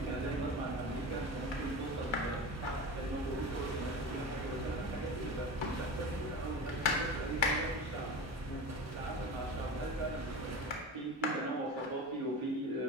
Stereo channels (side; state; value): both; normal; correlation 0.29